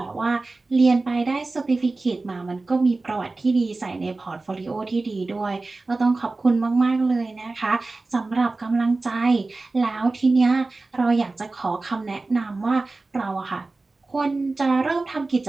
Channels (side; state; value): left; quieter; 3.4 dB